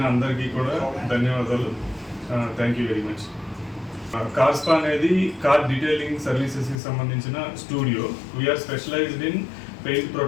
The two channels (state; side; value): drops out; right; at 6.8 s